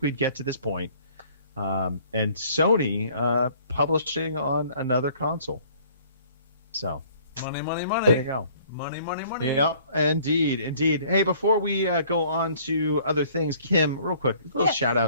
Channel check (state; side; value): inverted; both; correlation -0.56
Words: we'd get to this point? And Sony publishing on another console. So money. There you go. Money. Yeah, indeed. Hey, before we go on to other things, Kim, real quick, a little shout